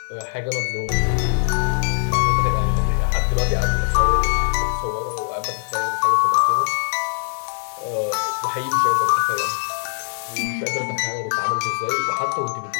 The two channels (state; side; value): silent; right; 65 dB below the other